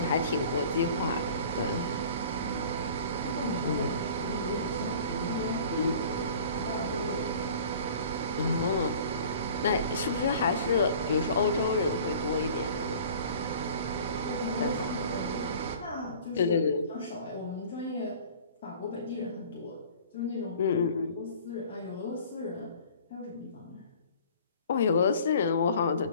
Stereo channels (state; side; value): inverted; both; correlation -0.46